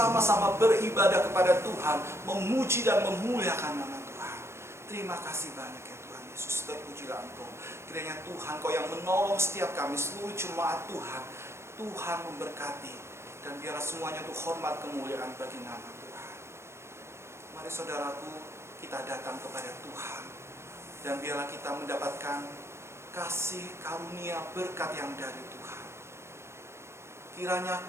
beribadah kepada Tuhan, memuji dan memuliakan nama Tuhan. Terima kasih banyak ya Tuhan Yesus, terpujilah Engkau. Kiranya Tuhan Kau yang menolong setiap kami, seluruh jemaat Tuhan. Tuhan memberkati. Dan biarlah semuanya untuk hormat kemuliaan bagi nama Tuhan. Mari saudaraku, kita datang kepada Tuhan. Dan biarlah kita mendapatkan kasih karunia berkat yang dari Tuhan. Kiranya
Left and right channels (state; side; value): late; left; 0.13 ms